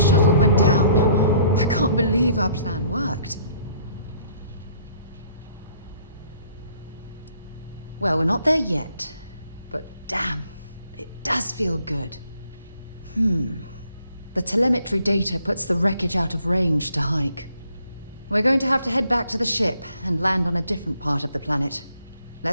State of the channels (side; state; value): both; inverted; correlation -0.62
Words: shuttle went down. I can't believe our plan worked. Well, we're not there yet. But damn, it does feel good. The telemetry data puts the wreckage out of range to hike. We're going to have to head back to the ship and land on a different part of the planet.